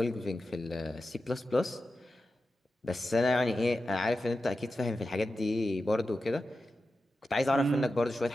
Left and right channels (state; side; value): normal; both; correlation 0.92